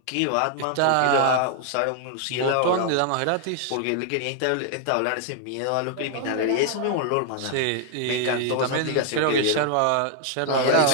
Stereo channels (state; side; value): different; both; correlation 0.00